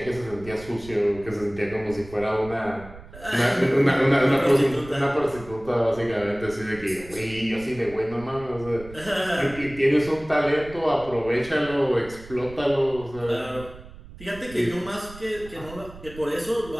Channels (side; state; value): right; noise; rumble, 17 dB below the sound